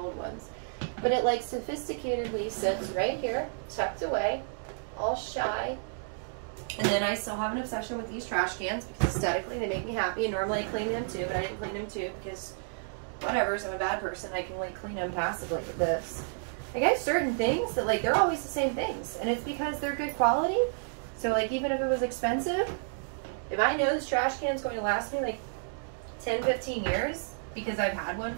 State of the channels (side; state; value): left; silent; digital silence